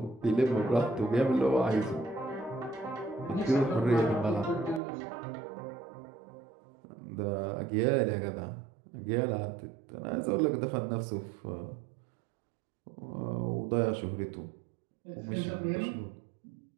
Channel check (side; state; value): left; drops out; at 4.8 s